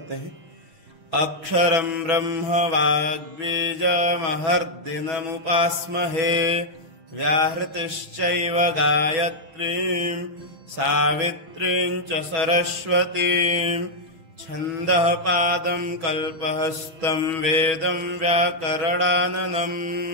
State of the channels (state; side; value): late; left; 6.1 ms